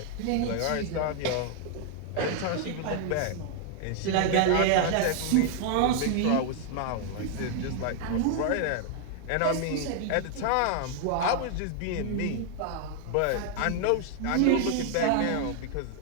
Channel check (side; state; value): both; different; correlation 0.00